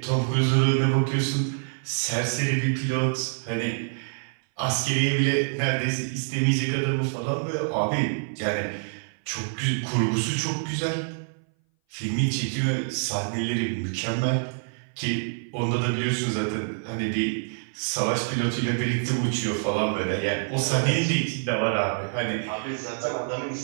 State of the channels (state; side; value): silent; left; 58 dB below the other